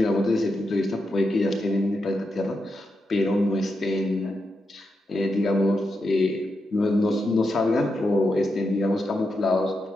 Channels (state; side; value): normal; both; correlation 0.86